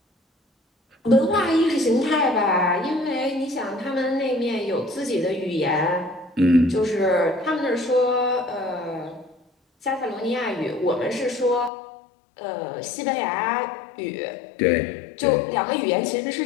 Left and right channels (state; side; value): drops out; right; at 11.7 s